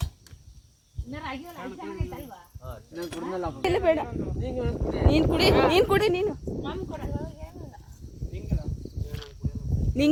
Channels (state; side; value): identical; both; correlation 1.00